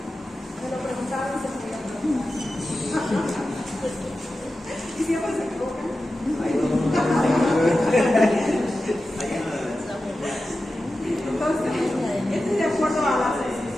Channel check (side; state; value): both; normal; correlation 0.93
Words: Me lo preguntaron, se lo voy a preguntar. Y siempre se equivocan. Entonces, esto es de acuerdo a la